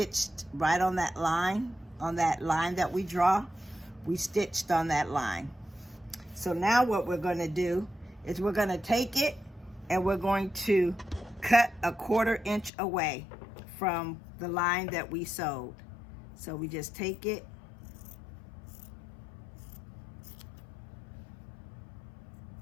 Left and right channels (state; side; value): drops out; right; at 12.7 s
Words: right on that line that we draw? We stitched on that line. So now what we're going to do is we're going to take it and we're going to cut a 1/4 inch away from the line that we sewed. So we just take it